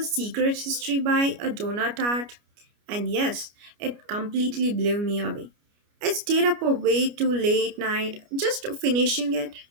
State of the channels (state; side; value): late; left; 29 ms